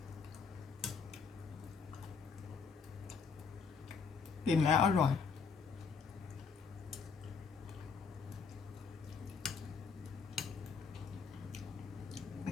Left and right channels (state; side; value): quieter; right; 5.6 dB